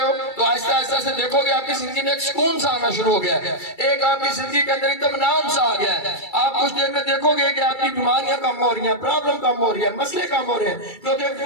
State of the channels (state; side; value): late; right; 2.3 ms